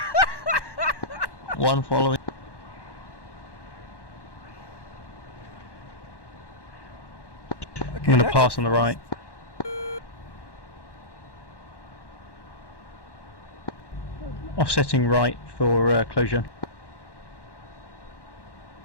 One following. I'm going to pass on the right. Offsetting right for closure.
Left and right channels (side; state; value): right; late; 1.1 ms